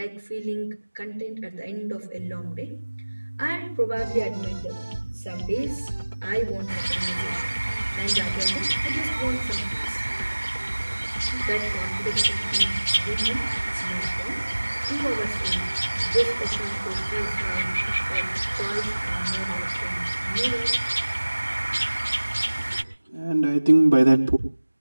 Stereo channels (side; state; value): both; inverted; correlation -1.00